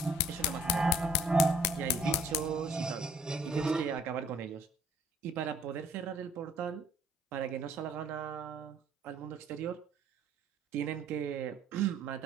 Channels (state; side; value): normal; both; correlation 0.59